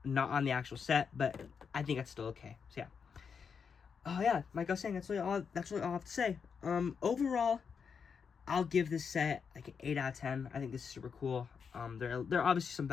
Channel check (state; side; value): quieter; right; 6.2 dB